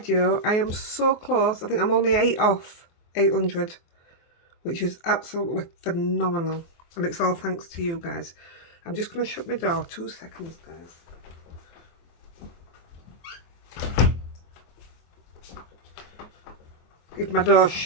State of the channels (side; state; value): right; late; 23 ms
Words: I am so close. I think I'm only 8 off 800. Which is absolutely phenomenal, and it's all thanks to you guys. I'm just going to shut my door 2 seconds, guys. If my door's